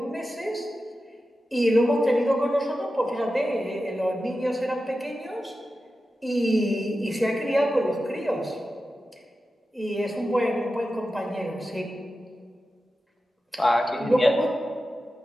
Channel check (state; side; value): normal; both; correlation 0.92